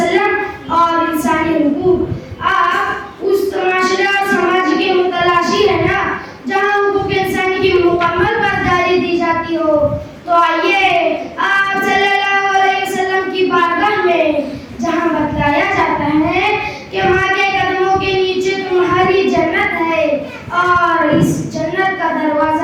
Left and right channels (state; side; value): identical; both; correlation 1.00